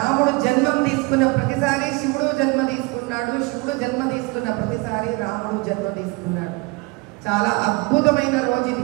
జన్మం తీసుకున్న ప్రతిసారి శివుడు జన్మ తీసుకున్నాడు, శివుడు జన్మ తీసుకున్న ప్రతిసారి రాముడు జన్మ తీసుకున్నాడు. చాలా అద్భుతమైన రోజు ఇది.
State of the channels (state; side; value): quieter; left; 25.4 dB